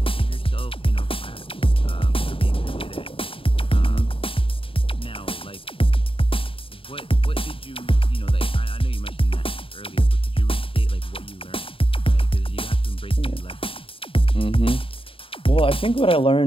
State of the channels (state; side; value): late; right; 0.26 ms